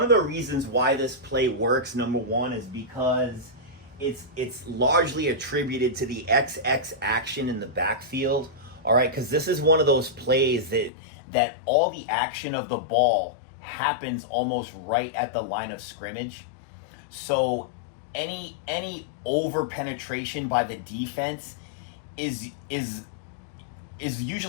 of the reasons why this play works, number one, is because it's largely attributed to the XX action in the backfield. All right, because this is one of those plays that all the action of the ball happens almost right at the line of scrimmage. So any over penetration by the defense is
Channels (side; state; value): right; drops out; at 10.9 s